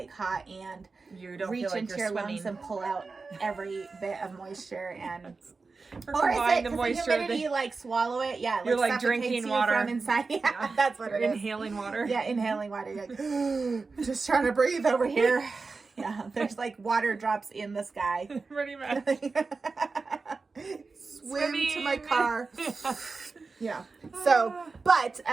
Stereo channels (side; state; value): left; quieter; 4.2 dB